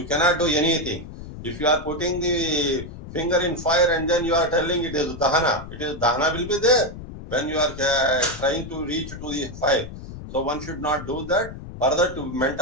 cannot do anything. If you are putting the finger in fire and then you are telling it is Dahana, Dahana will be there when you are trying to reach to the fire. So one should not do that. Further, to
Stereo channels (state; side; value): noise; left; rumble, 12 dB below the sound